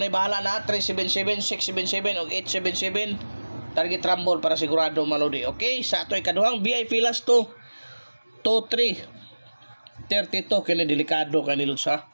bahala na 377, 677 og 877. Target rumble para sigurado mga lodi. Okay, sa ato ikaduhang VIP last to 2-3 32 kini delikado kani lods ha.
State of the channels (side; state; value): both; inverted; correlation -1.00